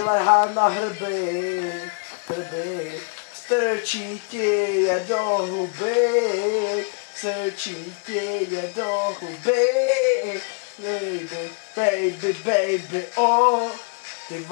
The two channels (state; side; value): quieter; right; 34.8 dB